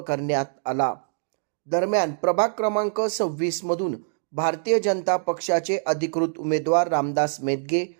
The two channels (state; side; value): silent; left; digital silence